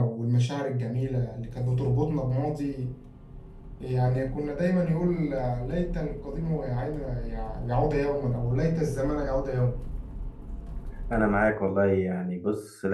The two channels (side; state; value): both; identical; correlation 1.00